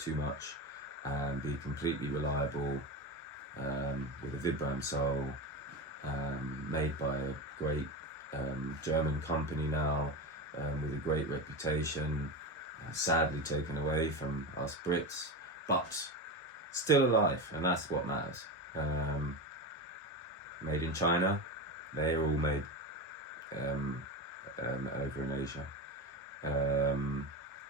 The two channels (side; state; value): both; normal; correlation 0.20